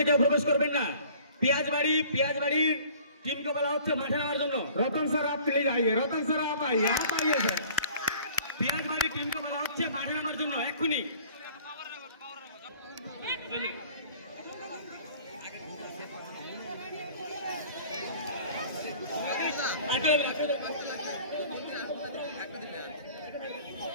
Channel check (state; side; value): inverted; both; correlation -0.50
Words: কেউ প্রবেশ করবেন না। पियाजबाड़ी टीम को বলা হচ্ছে মাঠে নামার জন্য। रतन सर आप प्लीज आइए, रतन सर आप आइए सर। पियाजबाड़ी टीम को বলা হচ্ছে মাঠে নামার জন্য এক্ষুনি।